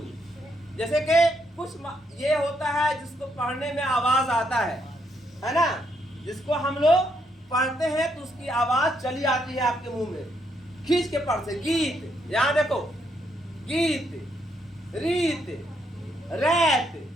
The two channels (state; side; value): normal; both; correlation 0.76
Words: जैसे कि कुछ ये होता है जिसको पढ़ने में आवाज आता है ना, जिसको हम लोग पढ़ते हैं तो उसकी आवाज चली आती है आपके मुंह में, खींच के पढ़ से। गीत, यहां देखो, गीत, रीत, रैत,